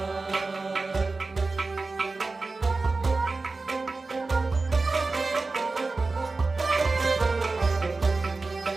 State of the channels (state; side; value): quieter; left; 3.7 dB